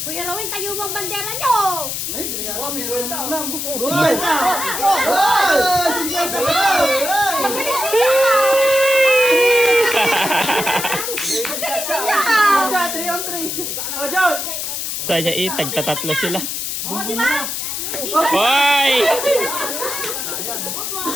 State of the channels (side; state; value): left; noise; hiss, 3 dB below the sound